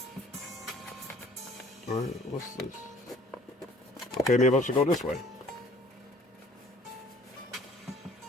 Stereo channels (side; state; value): both; normal; correlation 0.55